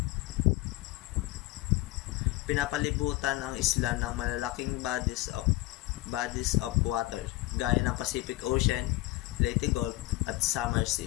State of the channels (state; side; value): quieter; right; 18.6 dB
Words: Pinapalibutan ang isla ng malalaking bodies of water gaya ng Pacific Ocean, Leyte Gulf at Samar